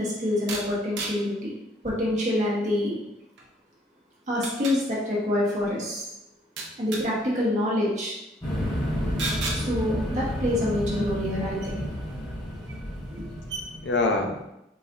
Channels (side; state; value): both; normal; correlation 0.61